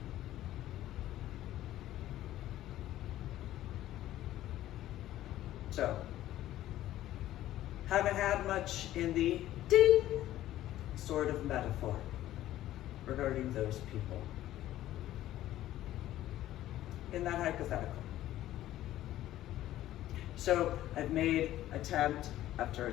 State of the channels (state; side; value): quieter; right; 13.8 dB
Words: So, haven't had much in the ding sort of metaphor regarding those people in that hypothetical. So I've made attempt after